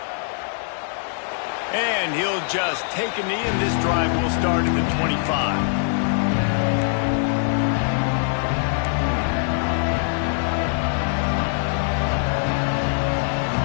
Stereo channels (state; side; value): silent; right; 64 dB below the other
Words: And he'll just take a knee, and this drive will start at the 25.